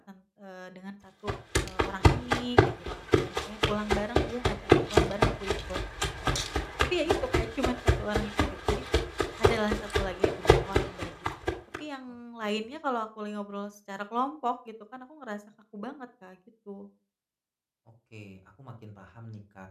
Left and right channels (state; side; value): identical; both; correlation 1.00